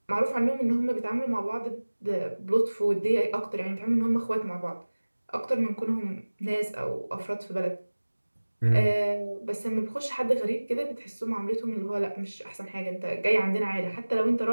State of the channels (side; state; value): both; inverted; correlation -1.00